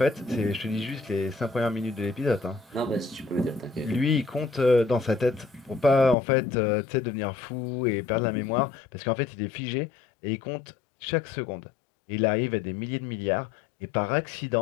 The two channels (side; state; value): right; drops out; at 6.2 s